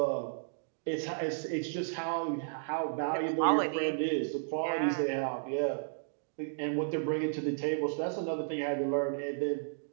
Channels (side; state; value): left; silent; digital silence